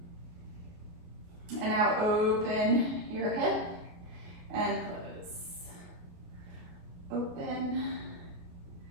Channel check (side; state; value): left; late; 28 ms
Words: And now open your hip and close. Open.